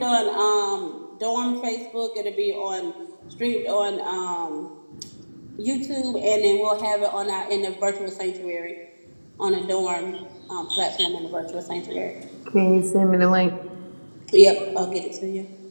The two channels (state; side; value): inverted; both; correlation -1.00